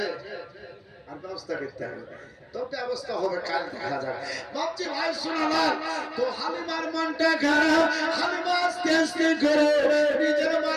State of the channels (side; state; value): both; identical; correlation 1.00